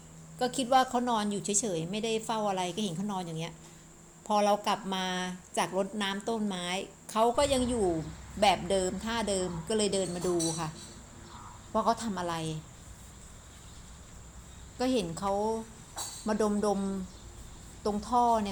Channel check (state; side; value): identical; both; correlation 1.00